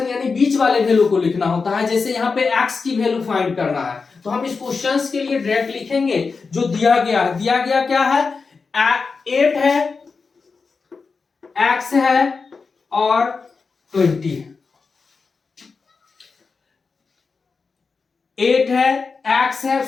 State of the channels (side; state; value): right; quieter; 4.7 dB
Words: यानी बीच वाले वैल्यू को लिखना होता है। जैसे यहाँ पे x की वैल्यू फाइंड करना है तो हम इस क्वेश्चंस के लिए डायरेक्ट लिखेंगे जो दिया गया है। दिया गया क्या है? 8 है, x है और 20 है। 8 है, x है,